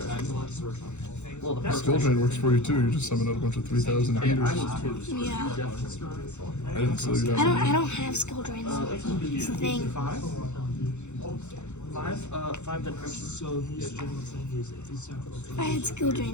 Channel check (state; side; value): late; right; 0.83 ms